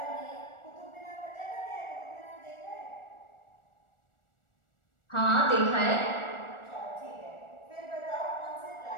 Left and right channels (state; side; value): late; right; 1.4 ms